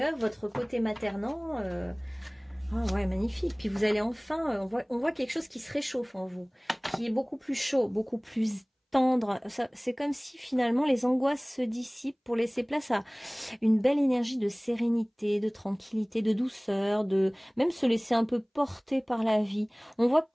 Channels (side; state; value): both; identical; correlation 1.00